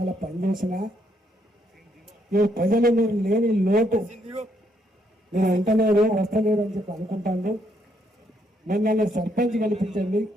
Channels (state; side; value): normal; both; correlation 0.73